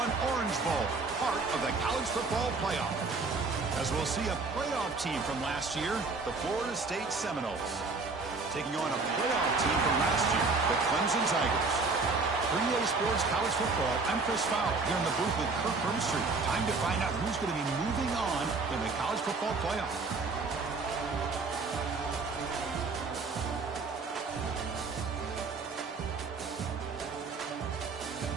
Orange Bowl, part of the college football playoff. As we'll see a playoff team from last year, the Florida State Seminoles, taking on a playoff team from last year, the Clemson Tigers. For EA Sports College Football, I'm Chris Fowle here in the booth with Kirk Herbstreit. Time to find out who's going to be moving on in the college football playoff.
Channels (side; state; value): left; quieter; 4.0 dB